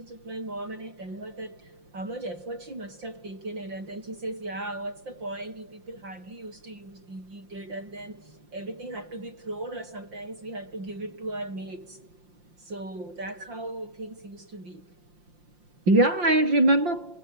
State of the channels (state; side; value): late; left; 5.7 ms